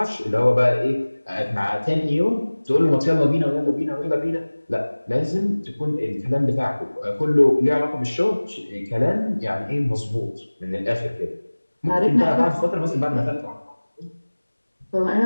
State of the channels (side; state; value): both; inverted; correlation -1.00